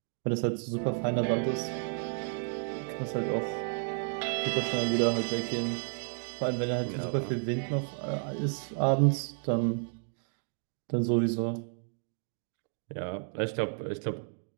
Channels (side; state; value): left; silent; 57 dB below the other